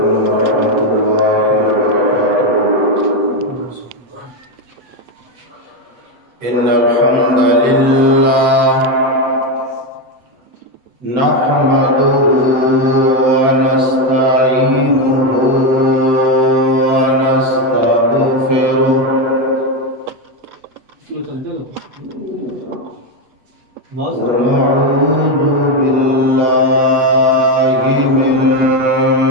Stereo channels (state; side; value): late; left; 8.0 ms